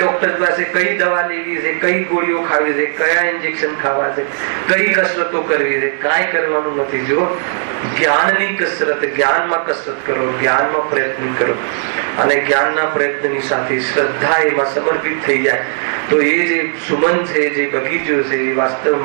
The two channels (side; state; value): left; silent; digital silence